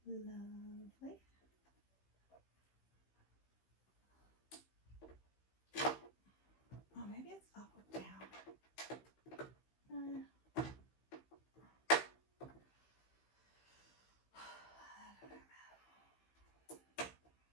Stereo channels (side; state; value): right; late; 15 ms